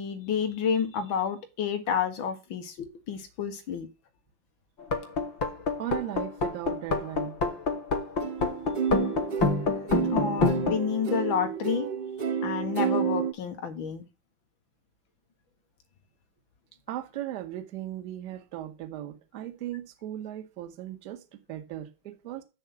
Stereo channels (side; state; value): right; late; 6.0 ms